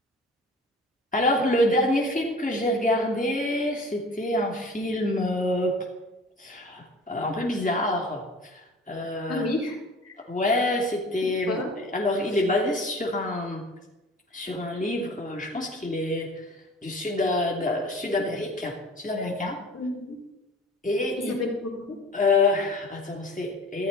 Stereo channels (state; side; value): normal; both; correlation 0.43